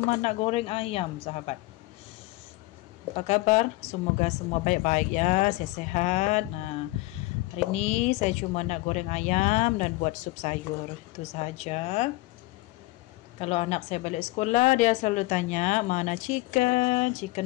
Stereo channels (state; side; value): quieter; right; 20.2 dB